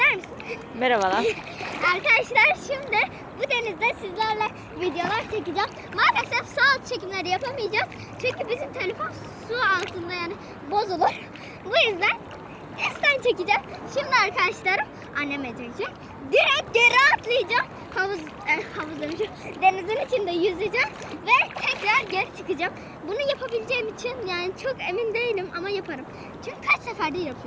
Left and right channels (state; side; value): identical; both; correlation 1.00